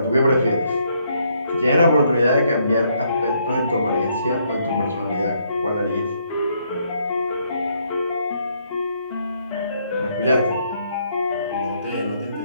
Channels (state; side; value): inverted; both; correlation -0.71